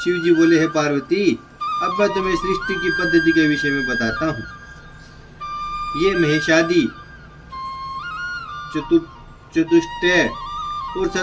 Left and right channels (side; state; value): both; identical; correlation 1.00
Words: जी बोले, है पार्वती, अब मैं तुम्हें सृष्टि की पद्धति के विषय में बताता हूँ। ये महेशादि चतुष्टय और